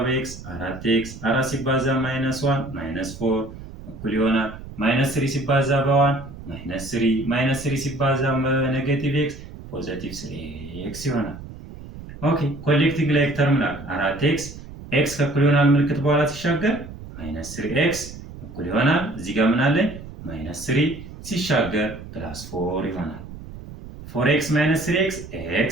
በኤክስ 4x፣ 4 ሲባዛ ማይነስ 1 ማይነስ 4 እኩል ይሆናል ማይነስ 3 ሲባዛ በ1 ማይነስ 3፣ ማይነስ 3 ሲባዛ በኔጌቲቭ ኤክስ ፖዚቲቭ 3x ይሆናል። ኦኬ ኮሌክቲንግ ላይክ ተርም ላል 4x ኤክስ ከእኩል ይሆናል ምልክት በኋላ ሲሻገር ማይነስ 3x እኩል ይሆናል እዚህ ጋር ምን አለኝ ማይነስ 3 ሲሻገር ፕላስ 4 ይሆናል። 4x ማይነስ 3x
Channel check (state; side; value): noise; right; rumble, 14 dB below the sound